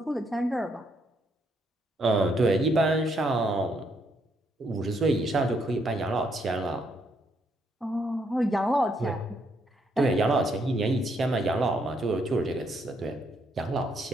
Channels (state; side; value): normal; both; correlation 0.74